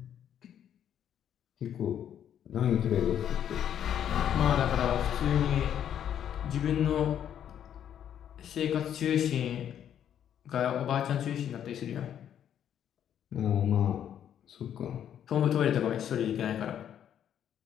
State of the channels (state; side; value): quieter; right; 9.7 dB